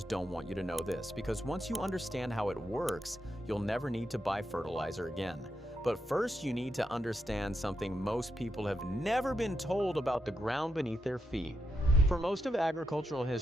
don't want you to know this, because once you understand how it works, you'll never need to buy fertilizer again. But first, you need to understand something most people have never been told about the ground beneath their feet. For most of agricultural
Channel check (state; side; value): normal; both; correlation 0.84